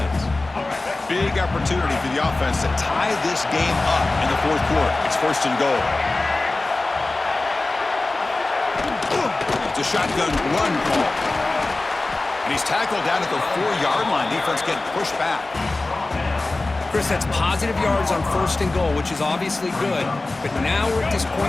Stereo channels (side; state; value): right; quieter; 3.1 dB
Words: Big opportunity for the offense to tie this game up in the 4th quarter. It's 1st and goal. It's a shotgun run call. And he's tackled down at the 4-yard line. Defense getting pushed back. Chris, that's positive yards on 1st and goal, which is obviously good. But now we're at this